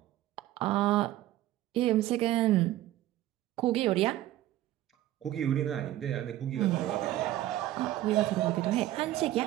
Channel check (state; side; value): quieter; left; 14.5 dB